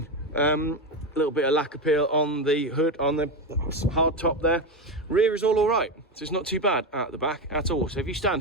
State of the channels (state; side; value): normal; both; correlation 0.14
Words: A little bit of lack appeal on the hood, on the hard top there. Rear is all right, so it's not too bad at the back at all. So if you